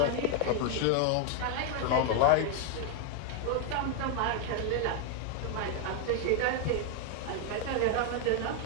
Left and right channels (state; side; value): different; both; correlation 0.00